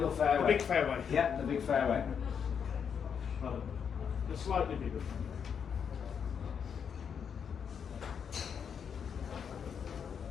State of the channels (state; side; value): quieter; right; 7.2 dB